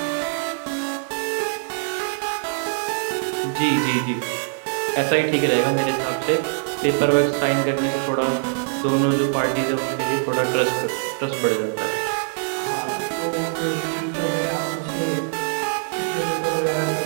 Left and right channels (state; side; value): silent; left; digital silence